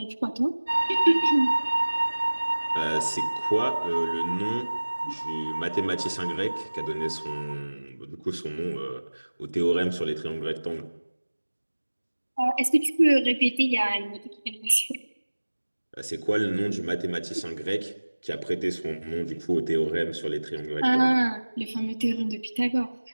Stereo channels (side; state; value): both; inverted; correlation -1.00